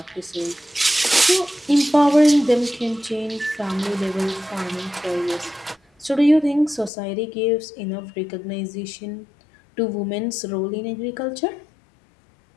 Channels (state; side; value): drops out; right; at 6.9 s